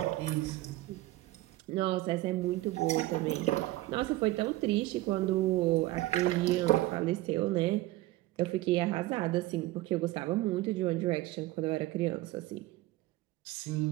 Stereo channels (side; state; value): left; quieter; 17.7 dB